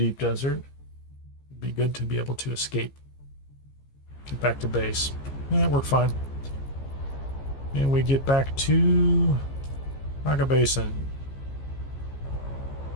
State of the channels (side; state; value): right; late; 15 ms